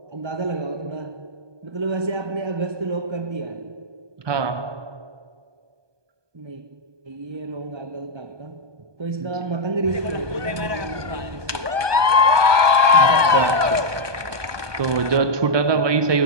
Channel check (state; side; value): late; left; 1.2 ms